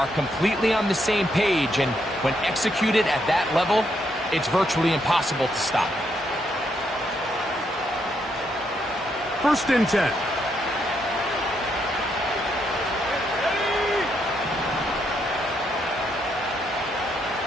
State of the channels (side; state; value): both; normal; correlation 0.77